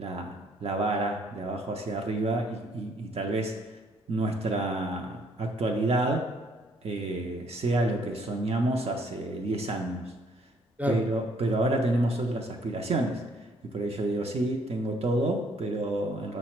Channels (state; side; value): normal; both; correlation 0.65